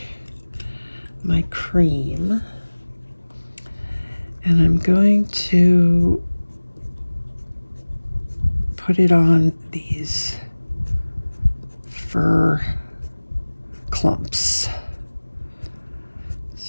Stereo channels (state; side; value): inverted; both; correlation -1.00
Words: my cream and I'm going to put it on these fur clumps.